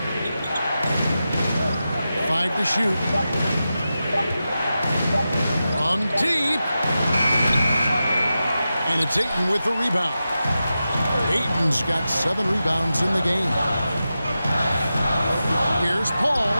5 to shoot. From deep. And it's Ayton with the rebound. Ayton's got 7 rebounds in the game. Here's Paul.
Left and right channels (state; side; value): inverted; both; correlation -0.92